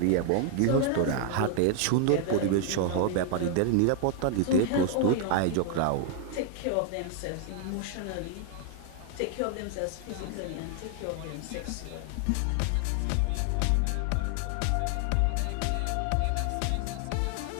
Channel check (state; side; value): different; both; correlation 0.00